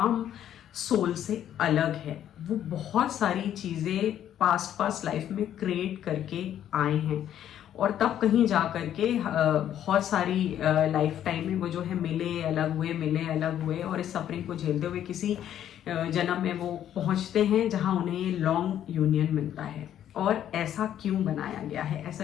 सोल से अलग है। वो बहुत सारी चीज़ें पास्ट लाइफ में क्रिएट करके आए हैं और तब कहीं जा करके बहुत सारी लाइफ टाइम में वो जो है मिले अलग हुए और इस सफरिंग को झेलते हुए किसी जन्म में वो पहुंचते हैं जहां उन्हें लॉन्ग यूनियन मिलता है। और ऐसा क्यों बनाया गया है?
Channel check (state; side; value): quieter; right; 10.7 dB